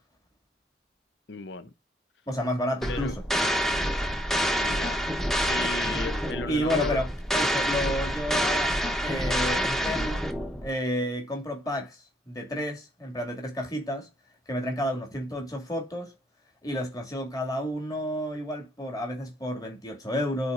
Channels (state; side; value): normal; both; correlation 0.70